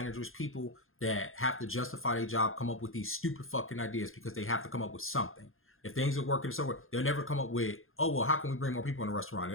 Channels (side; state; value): right; late; 0.60 ms